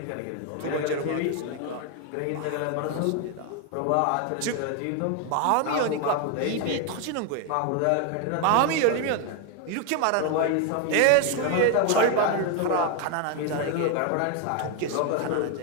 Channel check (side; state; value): both; different; correlation 0.01